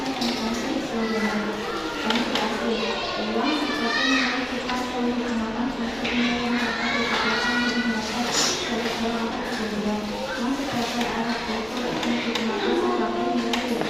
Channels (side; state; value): left; noise; rumble, 24 dB below the sound